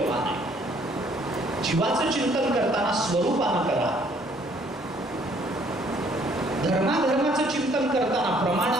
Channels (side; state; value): both; normal; correlation 0.62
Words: आहे. जीवाचं चिंतन करताना स्वरूपानं करा. धर्माचं चिंतन करताना